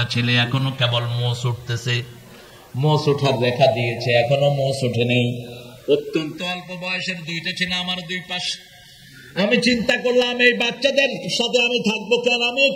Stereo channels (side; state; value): both; identical; correlation 1.00